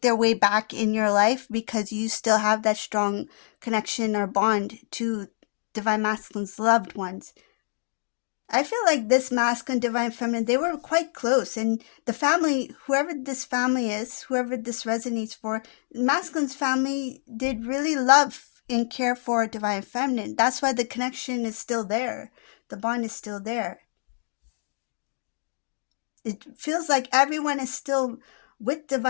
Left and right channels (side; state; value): right; silent; digital silence